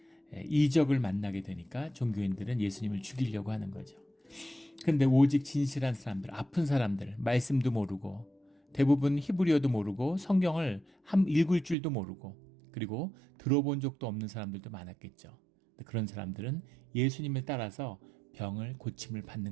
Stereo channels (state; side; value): drops out; left; at 11.8 s